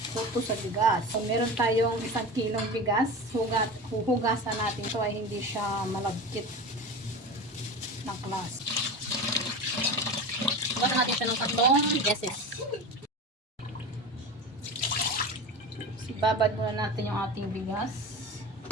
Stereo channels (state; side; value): normal; both; correlation 0.29